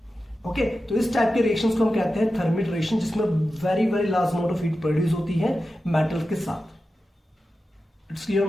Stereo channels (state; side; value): normal; both; correlation 0.92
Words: ओके, तो इस टाइप के रिएक्शंस को हम कहते हैं थर्मिट रिएक्शन, जिसमें very very large amount of heat produce होती है मेटल के साथ। It's clear